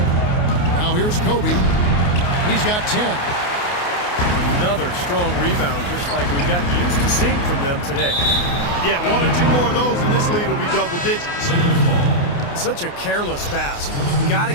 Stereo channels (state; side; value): late; right; 28 ms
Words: Now here's Kobe. He's got 10. Another strong rebound, just like we've gotten used to seeing from them today. Yeah, 1 or 2 more of those, and this lead will be double digits. Such a careless pass. You've got to